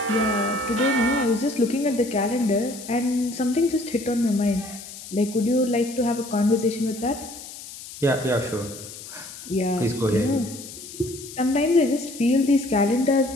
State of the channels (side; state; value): left; noise; hiss, 14 dB below the sound